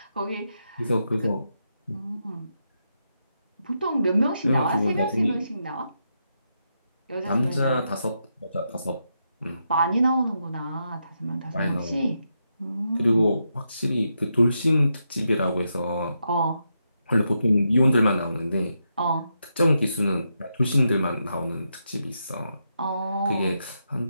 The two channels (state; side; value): inverted; both; correlation -0.83